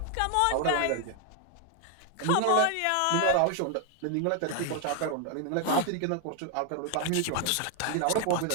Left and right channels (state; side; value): different; both; correlation 0.00